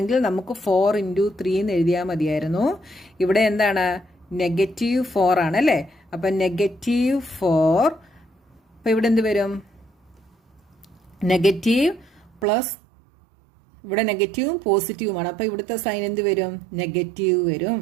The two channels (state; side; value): drops out; left; at 12.5 s